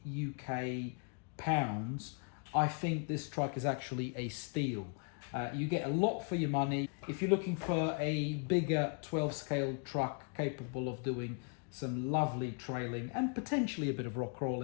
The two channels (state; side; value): quieter; right; 38.2 dB